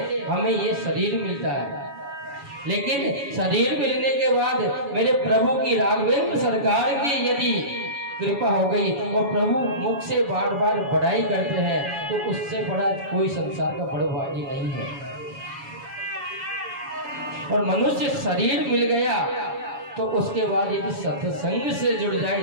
हमें ये शरीर मिलता है, लेकिन शरीर मिलने के बाद मेरे प्रभु की राघवेंद्र सरकार की यदि कृपा हो गई और प्रभु मुख से बार बार बड़ाई करते हैं, तो उससे बड़ा कोई संसार का बड़ा भागी नहीं है। और मनुष्य शरीर मिल गया तो उसके बाद यदि सत्संग से जुड़ जाए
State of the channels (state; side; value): late; left; 7.2 ms